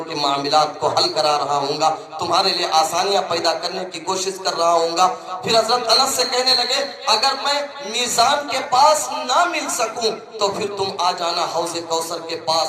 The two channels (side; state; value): both; identical; correlation 1.00